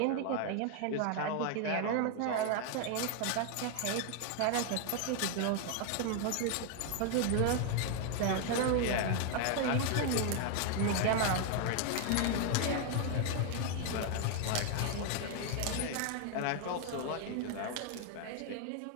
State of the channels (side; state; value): both; different; correlation 0.00